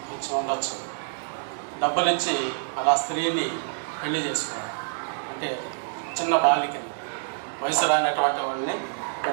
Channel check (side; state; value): left; silent; digital silence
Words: ఇచ్చి ఉండొచ్చు, డబ్బులు ఇచ్చి అలా స్త్రీని పెళ్లి చేసుకోవడం, అంటే చిన్న బాలికని వయసు రానటువంటి వాళ్ళని